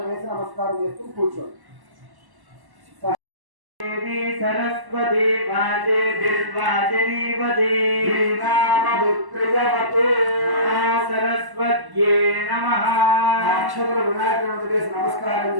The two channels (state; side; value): late; left; 1.1 ms